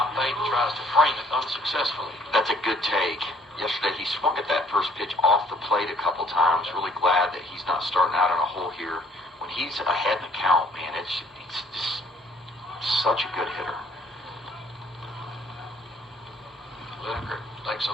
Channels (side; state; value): both; normal; correlation 0.59